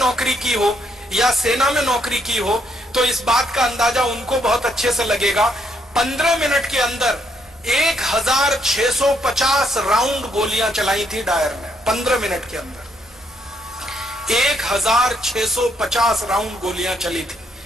की हो या सेना में नौकरी की हो, तो इस बात का अंदाजा उनको बहुत अच्छे से लगेगा। 15 मिनट के अंदर 1650 राउंड गोलियां चलाई थी डायर ने। 15 मिनट के अंदर 1650 राउंड गोलियां चली थी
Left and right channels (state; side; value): normal; both; correlation 0.73